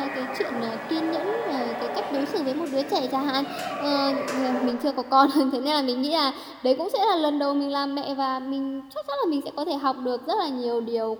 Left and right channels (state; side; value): identical; both; correlation 1.00